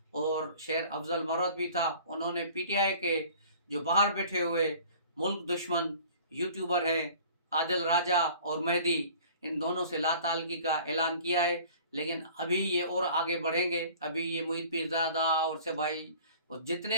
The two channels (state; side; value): inverted; both; correlation -0.47